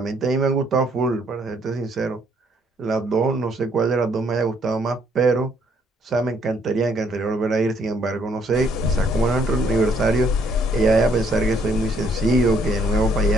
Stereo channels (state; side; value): normal; both; correlation 0.67